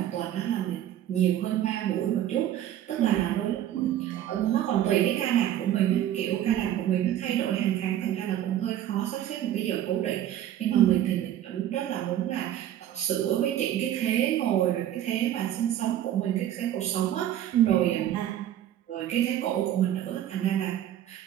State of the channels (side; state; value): left; quieter; 11.7 dB